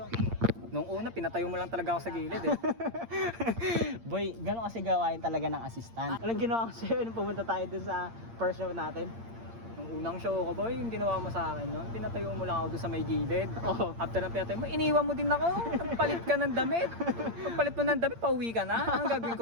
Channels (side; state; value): left; late; 8.7 ms